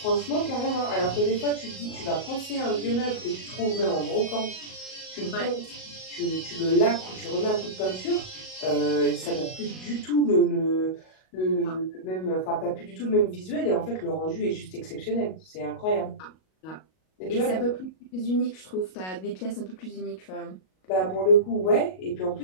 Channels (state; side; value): late; right; 38 ms